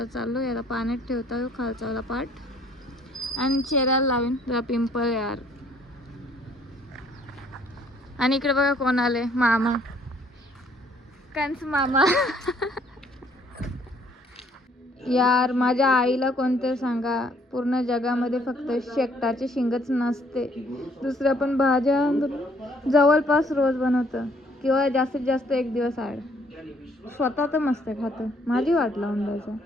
चाललो याला पाण्यात ठेवता येऊ खालचावाला पार्ट. आणि चेहऱ्याला लावीन जरा पिंपल यार. आणि इकडे बघा कोण आले, मामा, कंस मामा. यार माझ्या आईला कोणते सांगा, पूर्ण जगामध्ये फक्त शेकटाची शिंगच नसते. दुसऱ्या पण भाज्या जवळपास रोज बनवतं, किंवा जास्तीत जास्त एक दिवस आड. स्वतः तर मस्त खातं, माझी वाट लावून द्यायचं.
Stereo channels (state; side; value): normal; both; correlation 0.63